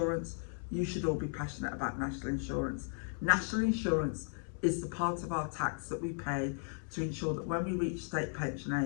You should all be passionate about national insurance. National insurance is the part of our tax that we pay to ensure that when we reach state pension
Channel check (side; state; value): right; silent; 54 dB below the other